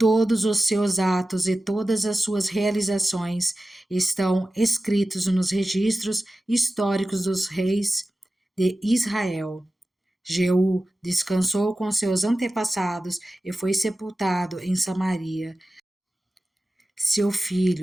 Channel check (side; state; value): both; normal; correlation 0.95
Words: os seus atos e todas as suas realizações estão escritos nos registros históricos dos reis de Israel. Jeú descansou com seus antepassados e foi sepultado em Samaria. Seu